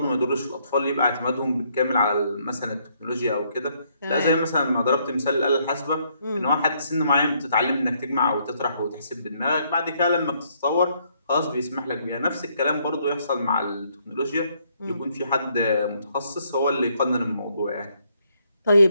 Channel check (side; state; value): both; inverted; correlation -0.70